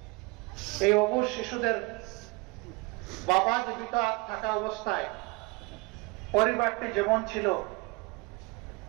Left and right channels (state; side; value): quieter; left; 26.8 dB